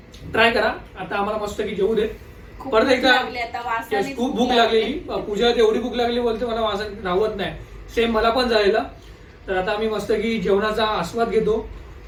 ट्राय करा. आता आम्हाला मस्त की जेवू देत. परत एकदा खूप भूक लागलेली. पूजा एवढी भूक लागली बोलते मला वासन राहत नाही. सेम मला पण झालेलं. तर आता आम्ही मस्त की जेवणाचा आस्वाद घेतो.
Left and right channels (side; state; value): both; identical; correlation 1.00